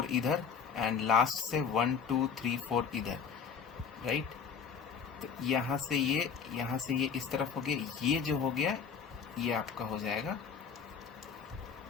इधर एंड लास्ट से 1 2 3 4 इधर। राइट, तो यहाँ से ये इस तरफ हो गया, ये जो हो गया ये आपका हो जाएगा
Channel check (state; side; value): quieter; right; 6.4 dB